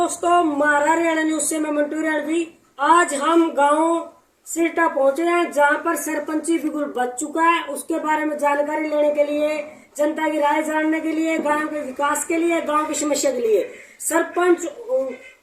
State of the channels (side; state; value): both; identical; correlation 1.00